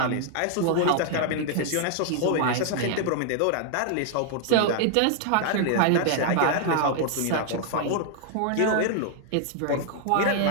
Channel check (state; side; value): different; both; correlation 0.00